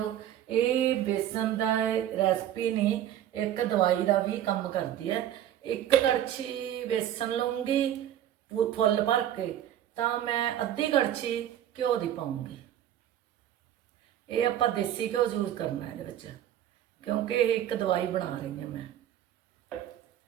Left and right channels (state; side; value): quieter; left; 11.3 dB